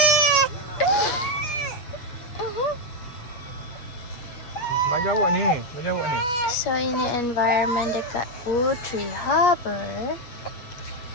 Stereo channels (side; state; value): right; late; 8.4 ms